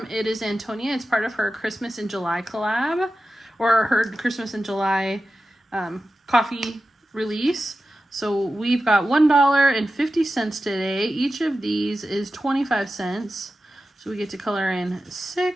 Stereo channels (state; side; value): normal; both; correlation 0.93